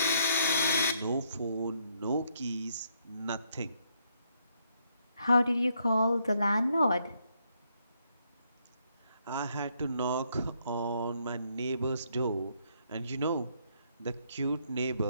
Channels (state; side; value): inverted; both; correlation -0.73